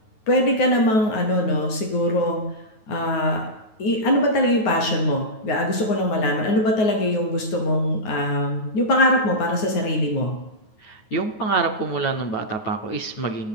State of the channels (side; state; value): right; late; 9.3 ms